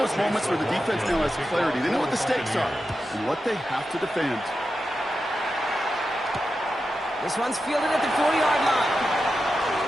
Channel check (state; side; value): normal; both; correlation 0.90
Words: those moments where the defense now has clarity. They know what the stakes are and what they have to defend. This one's fielded at the 4-yard line.